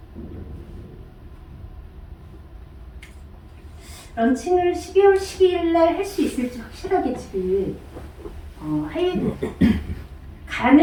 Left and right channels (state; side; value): identical; both; correlation 1.00